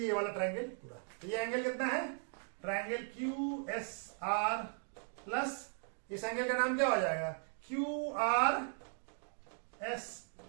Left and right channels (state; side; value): silent; left; 52 dB below the other